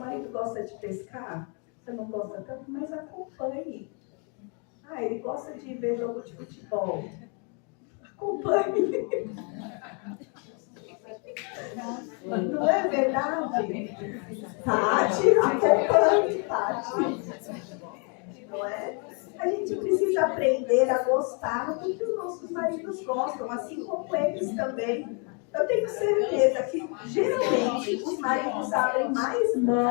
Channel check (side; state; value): right; quieter; 37.1 dB